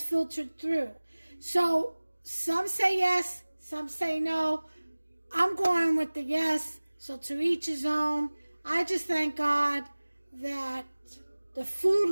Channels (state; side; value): inverted; both; correlation -1.00